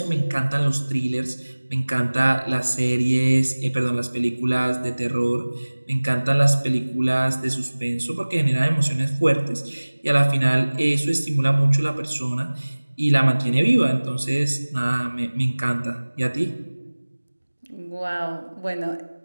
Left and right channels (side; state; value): both; inverted; correlation -1.00